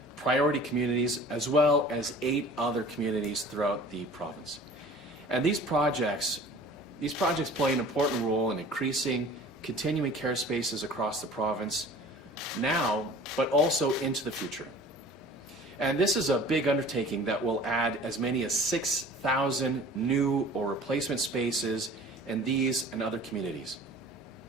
priority communities as well as 8 other communities throughout the province. And these projects play an important role in increasing continuing care spaces across the province now, but also into the future. And this is a big undertaking that will add as many as 6,000 new or replacement spaces in these and other communities.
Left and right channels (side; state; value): both; normal; correlation 0.45